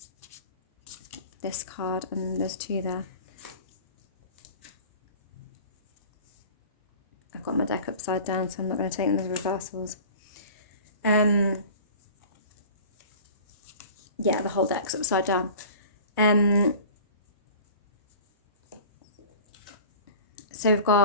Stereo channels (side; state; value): both; inverted; correlation -0.41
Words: This card, and there's two there. I've got my deck upside down, so I'm not going to take them as reversals. Yeah, the whole deck's upside down. So we've